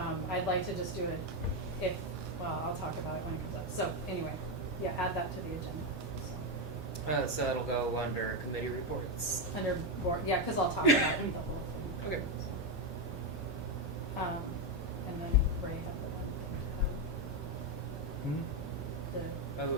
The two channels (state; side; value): normal; both; correlation 0.07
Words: I'd like to just do it I'll talk about it when it comes up. So anyway, yeah, add that to the agenda. So, So it'll go under committee reports. under board, yeah, cause I'll talk about the whole thing. Okay. And then Ray had the one thing, the Oh,